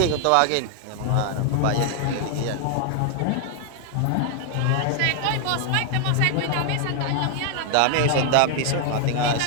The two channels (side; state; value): both; different; correlation 0.00